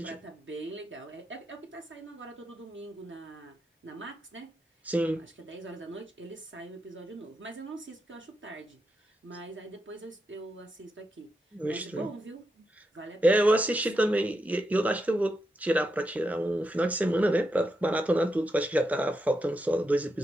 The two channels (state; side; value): normal; both; correlation 0.85